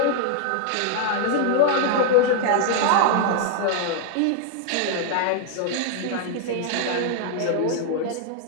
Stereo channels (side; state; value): both; different; correlation 0.00